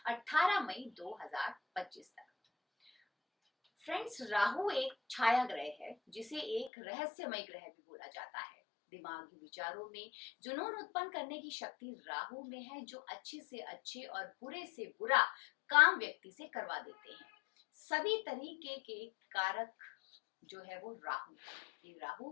18 मई 2025 तक। फ्रेंड्स, राहु एक छाया ग्रह है जिसे एक रहस्यमय ग्रह भी बोला जाता है। दिमागी विचारों में जुनून उत्पन्न करने की शक्ति राहु में है, जो अच्छे से अच्छे और बुरे से बुरा काम व्यक्ति से करवा देते हैं। सभी तरीके के कारक जो है वो राहु है। ये राहु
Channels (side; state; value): right; drops out; at 6.7 s